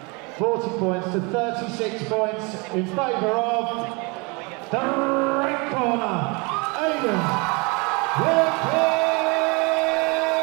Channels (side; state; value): left; quieter; 29.4 dB